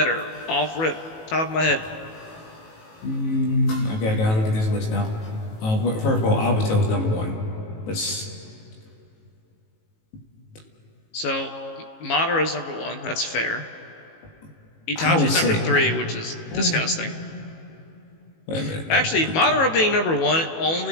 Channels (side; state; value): right; late; 18 ms